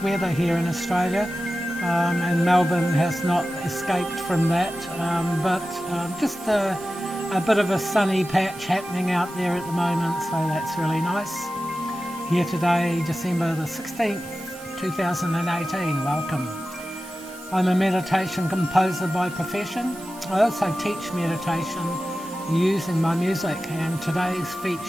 weather here in Australia. And Melbourne has not escaped from that, but just a bit of a sunny patch happening out there at the moment, so that's really nice. Here today, December the 16th, 2018, welcome. I'm a meditation composer by profession. I also teach meditation using my music, and today's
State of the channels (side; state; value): right; noise; hiss, 19 dB below the sound